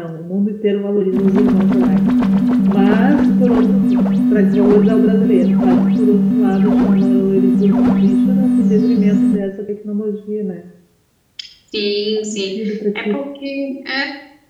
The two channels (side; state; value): both; identical; correlation 1.00